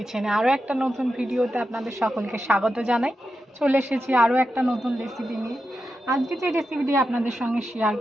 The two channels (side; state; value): both; normal; correlation 0.89